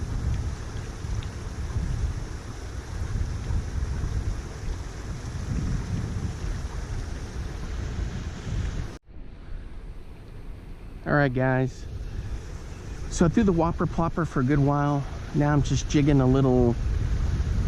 Alright guys, so I threw the whopper plopper for a good while. Now I'm just jigging a little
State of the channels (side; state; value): both; identical; correlation 1.00